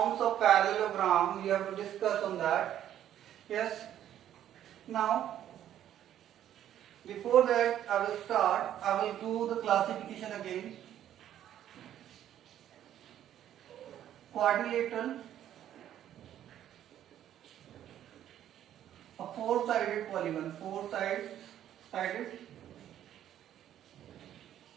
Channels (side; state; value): left; quieter; 11.2 dB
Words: of parallelogram, we have to discuss on that. Yes. Now, before that, I will do the classification again. Quadrilateral, a four-sided polygon, four-sided